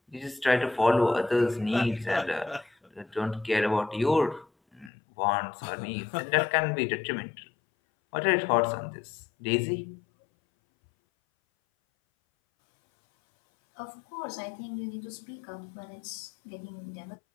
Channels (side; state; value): right; drops out; at 4.9 s